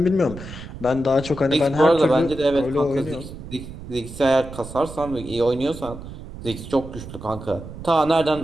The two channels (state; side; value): noise; right; rumble, 12 dB below the sound